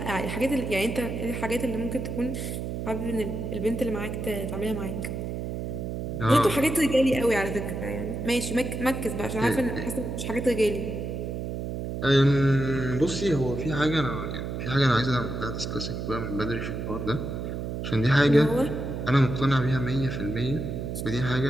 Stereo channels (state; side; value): noise; right; hum, 4 dB below the sound